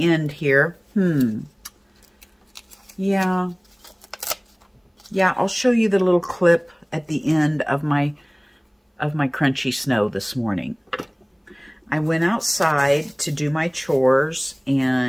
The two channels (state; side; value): identical; both; correlation 1.00